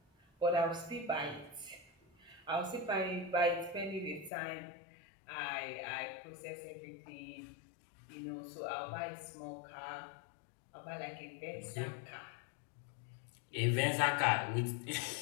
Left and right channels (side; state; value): right; drops out; at 4.3 s